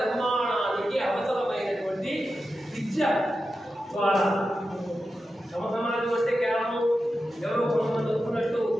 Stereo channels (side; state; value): both; normal; correlation 0.91